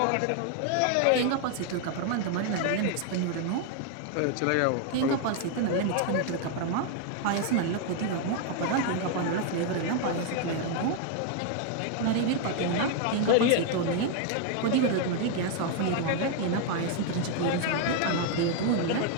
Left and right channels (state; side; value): different; both; correlation 0.00